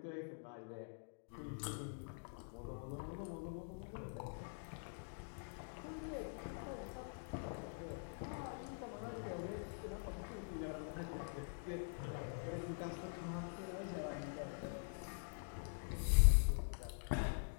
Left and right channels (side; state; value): right; silent; digital silence